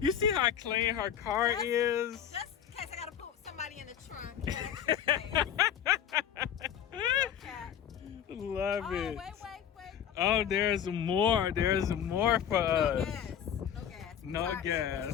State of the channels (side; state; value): right; quieter; 9.0 dB